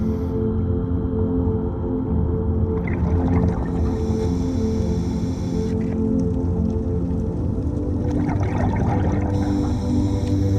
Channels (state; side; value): identical; both; correlation 1.00